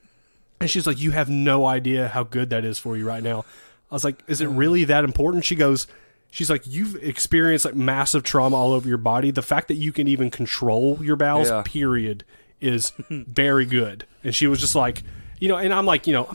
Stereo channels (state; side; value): inverted; both; correlation -1.00